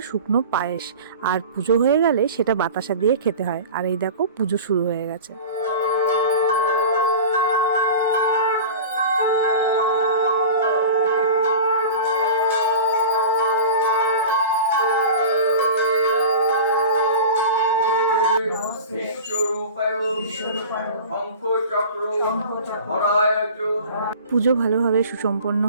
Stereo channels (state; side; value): inverted; both; correlation -0.36